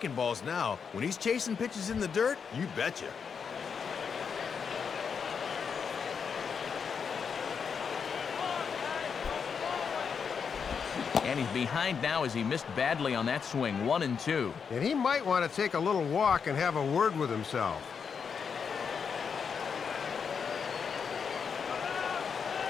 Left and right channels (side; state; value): right; quieter; 6.4 dB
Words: balls now. When he's chasing pitches in the dirt, you betcha. And he's behind now as he missed badly on that swing. 1-2. And he might want to take a little walk and have a word with himself.